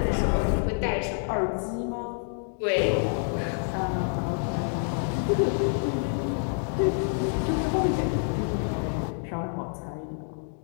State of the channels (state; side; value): silent; right; 60 dB below the other